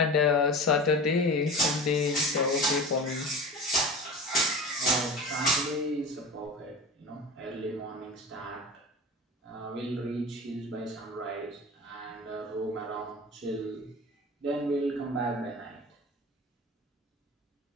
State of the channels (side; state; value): both; normal; correlation 0.32